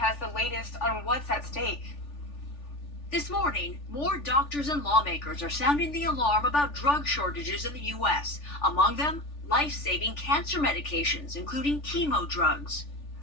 the latest on what's at stake. This morning, more doctors and lawmakers are sounding the alarm about drug shortages in the U.S. Among them, life-saving cancer medications, including chemo drugs.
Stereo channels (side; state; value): right; late; 3.4 ms